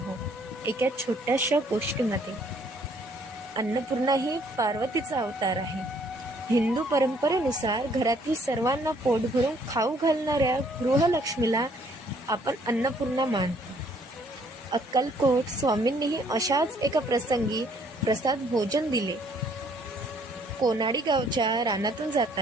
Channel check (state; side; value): normal; both; correlation 0.63